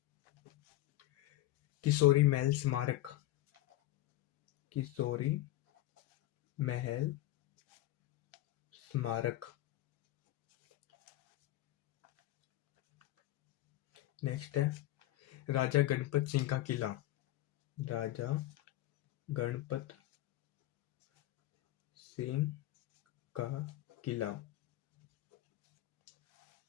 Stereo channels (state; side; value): quieter; right; 15.5 dB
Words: किशोरी महल स्मारक, किशोरी महल स्मारक। नेक्स्ट है राजा गणपत सिंह का किला, राजा गणपत सिंह का किला।